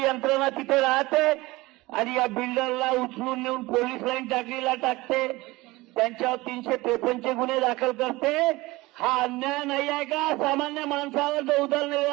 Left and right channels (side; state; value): left; quieter; 20.7 dB